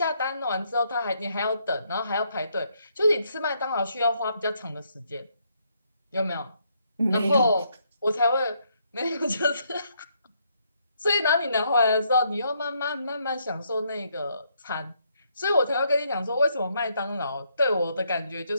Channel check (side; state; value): both; inverted; correlation -0.73